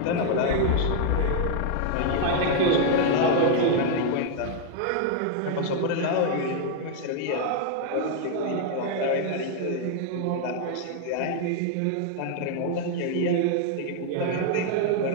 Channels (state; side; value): different; both; correlation 0.00